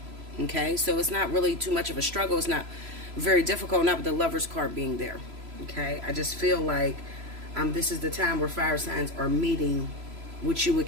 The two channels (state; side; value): late; left; 3.0 ms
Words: Okay, so it's not really too much of a struggle. It's not very difficult, not with the Lover's card being there. Okay, I just feel like this is the time where fire signs are meeting what you would